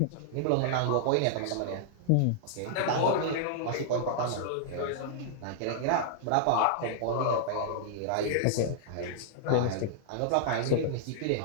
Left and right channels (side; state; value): both; different; correlation -0.01